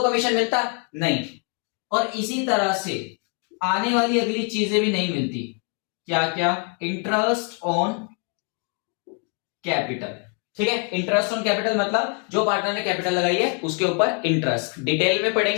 मिलता? नहीं। और इसी तरह से आने वाली अगली चीजें भी नहीं मिलती। क्या क्या? Interest on capital. ठीक है, इंटरेस्ट ऑन कैपिटल मतलब जो पार्टनर ने कैपिटल लगाई है उसके ऊपर इंटरेस्ट, डिटेल में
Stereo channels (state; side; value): quieter; right; 39.1 dB